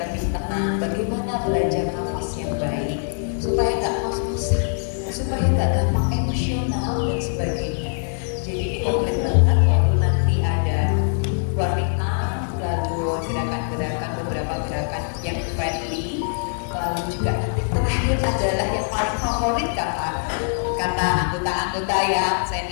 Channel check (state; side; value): silent; right; 64 dB below the other